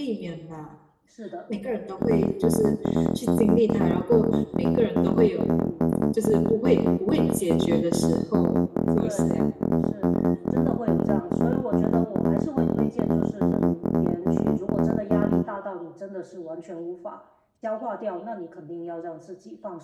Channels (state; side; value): identical; both; correlation 1.00